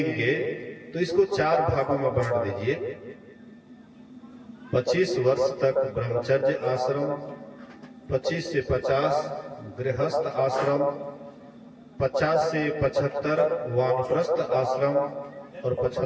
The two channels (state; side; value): identical; both; correlation 1.00